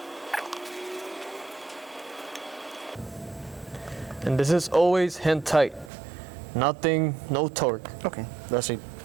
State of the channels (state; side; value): drops out; left; at 5.9 s